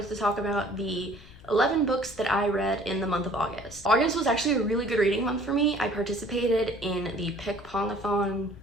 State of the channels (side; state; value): left; noise; rumble, 22 dB below the sound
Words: to talk about the 11 books that I read in the month of August. August was actually a really good reading month for me. I participated in the Pick Pongathon